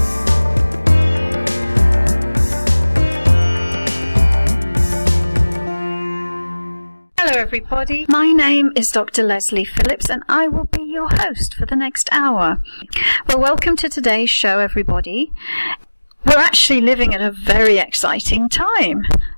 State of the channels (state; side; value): inverted; both; correlation -1.00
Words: Hello everybody, my name is Dr. Lesley Phillips and I will be your host for the next hour. Well, welcome to today's show everybody. We're actually living at a very exciting time